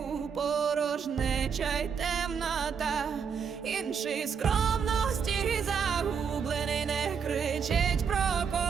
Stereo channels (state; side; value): quieter; left; 6.7 dB